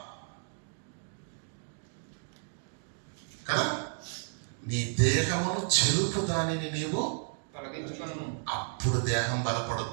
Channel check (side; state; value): left; silent; digital silence